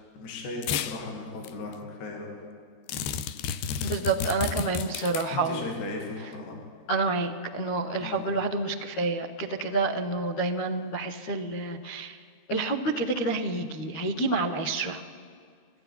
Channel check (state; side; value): late; right; 13 ms